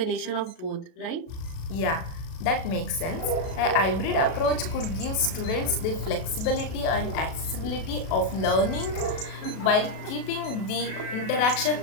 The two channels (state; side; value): late; right; 37 ms